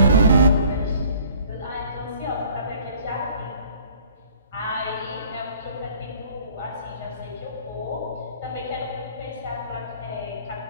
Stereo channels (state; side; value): inverted; both; correlation -0.53